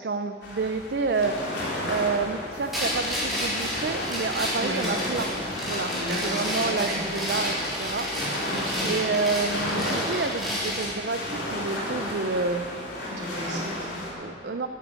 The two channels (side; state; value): both; normal; correlation 0.02